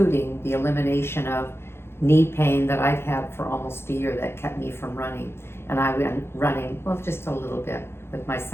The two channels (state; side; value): late; right; 0.12 ms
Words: the elimination of knee pain that I've had for almost a year that kept me from running. And I went running, well, just a little bit with my